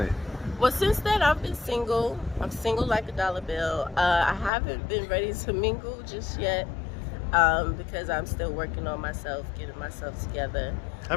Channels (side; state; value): right; drops out; at 4.5 s